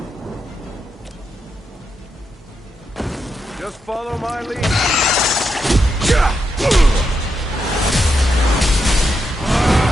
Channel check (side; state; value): both; normal; correlation 0.84